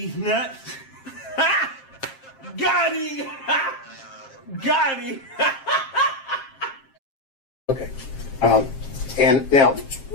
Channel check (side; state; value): right; late; 7.5 ms